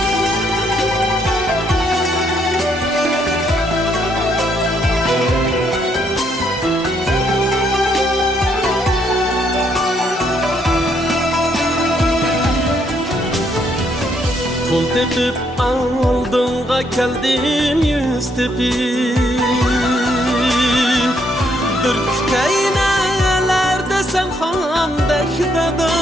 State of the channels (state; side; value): normal; both; correlation 0.72